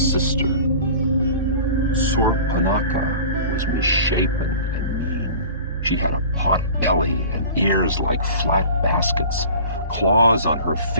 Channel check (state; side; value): inverted; both; correlation -0.41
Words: sister. Surpanaka was misshapen and mean. She had a pot belly and ears like flat baskets, claws on her